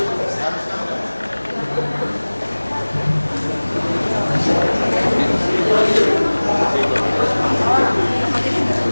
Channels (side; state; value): both; inverted; correlation -1.00